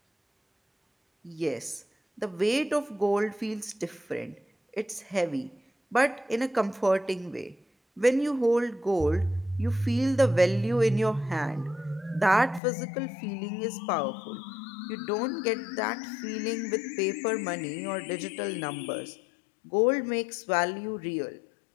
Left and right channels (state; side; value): drops out; right; at 12.6 s